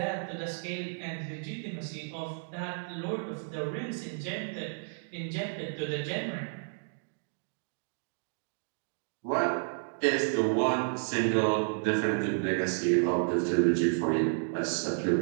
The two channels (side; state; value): left; silent; digital silence